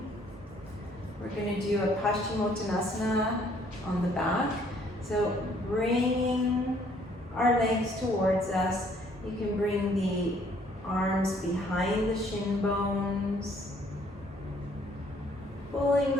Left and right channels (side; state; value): both; normal; correlation 0.63